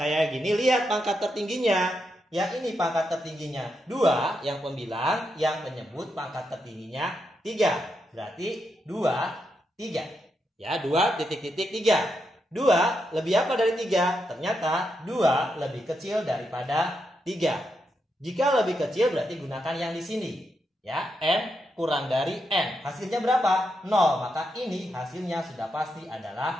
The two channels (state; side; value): normal; both; correlation 0.83